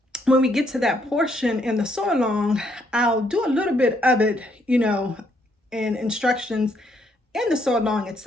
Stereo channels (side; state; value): both; normal; correlation 0.72